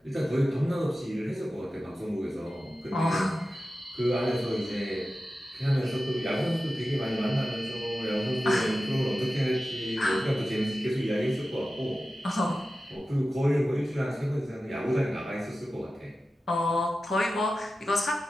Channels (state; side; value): normal; both; correlation 0.94